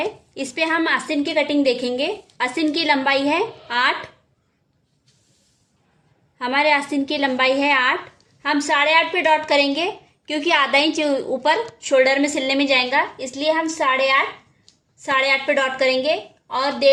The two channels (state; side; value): identical; both; correlation 1.00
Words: इस पे हम आस्तीन की कटिंग देखेंगे। आस्तीन की लंबाई है 8। हमारे आस्तीन की लंबाई है 8। हम 8.5 पे डॉट करेंगे, क्योंकि आधा इंच ऊपर शोल्डर में सिलने में जाएगा, इसलिए हम 8.5 पे डॉट करेंगे और